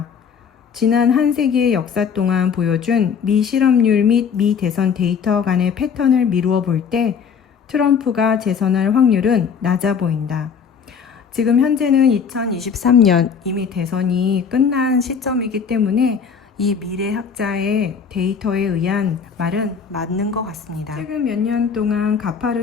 지난 한 세기의 역사 동안 보여준 미 실업률 및 미 대선 데이터 간의 패턴을 미루어 볼 때 트럼프가 재선할 확률은 낮아 보인다. 지금 현재는 2023년 이미 대선이 끝난 시점이기 때문에 이 미래학자의 데이터에 의한 말은 맞는 것 같습니다. 최근 몇 년 동안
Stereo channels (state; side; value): quieter; right; 6.6 dB